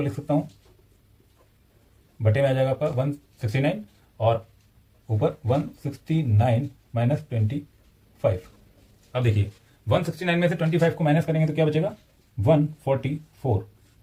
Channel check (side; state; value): both; identical; correlation 1.00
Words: लिख सकता हूँ बटे में आ जाएगा आपका 169 और ऊपर 169 माइनस 25। अब देखिए 169 में से 25 को माइनस करेंगे तो क्या बचेगा, 144